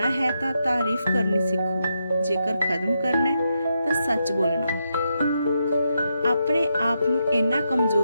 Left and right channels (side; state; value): both; inverted; correlation -0.83